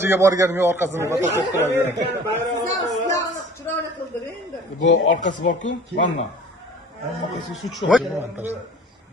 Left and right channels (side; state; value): both; normal; correlation 0.46